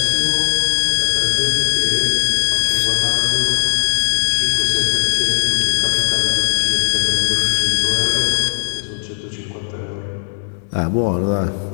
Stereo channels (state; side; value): silent; right; 68 dB below the other